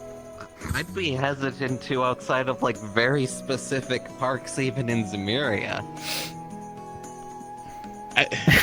I'd be hesitant to outside of like very specific parks, even in Zemuria. I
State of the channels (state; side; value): identical; both; correlation 1.00